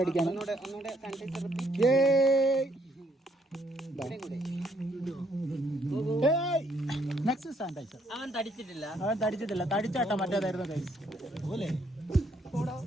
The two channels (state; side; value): normal; both; correlation 0.70